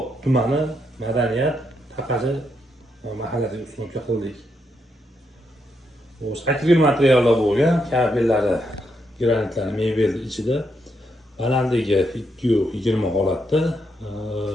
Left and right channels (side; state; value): both; normal; correlation 0.79